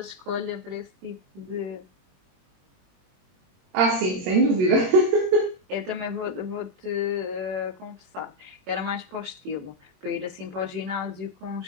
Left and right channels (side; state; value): left; late; 21 ms